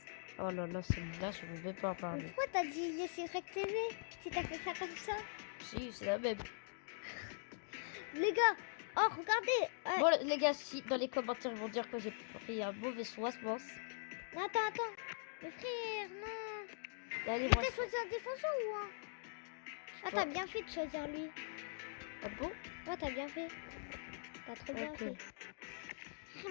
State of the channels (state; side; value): silent; right; digital silence